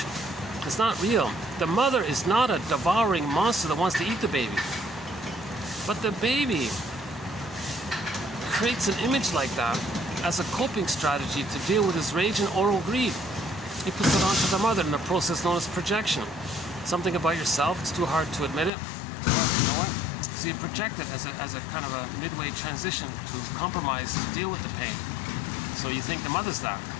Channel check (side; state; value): right; drops out; at 18.7 s